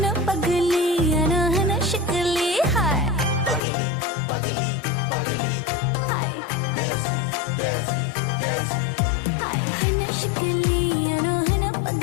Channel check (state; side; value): drops out; right; at 3.6 s